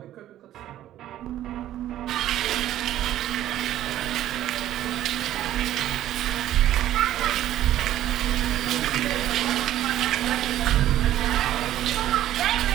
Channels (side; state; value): left; quieter; 12.8 dB